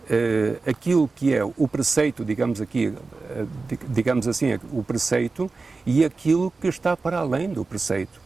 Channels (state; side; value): quieter; left; 4.0 dB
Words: aquilo que é o preceito, digamos assim, o preceito e aquilo que está para além do preceito.